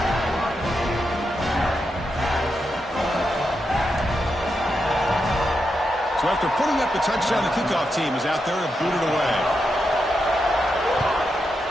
So after putting up the touchdown, the kickoff team is out there to boot it away.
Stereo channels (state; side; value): normal; both; correlation 0.85